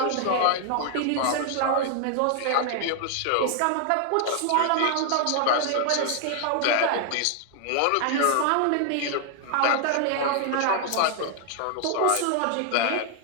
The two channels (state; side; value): different; both; correlation 0.00